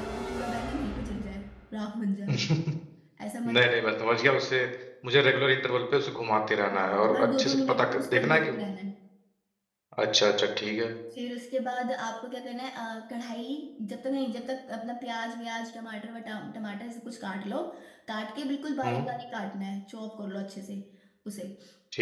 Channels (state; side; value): identical; both; correlation 1.00